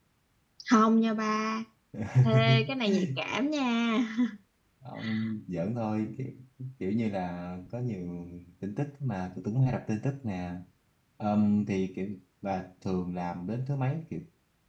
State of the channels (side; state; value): both; identical; correlation 1.00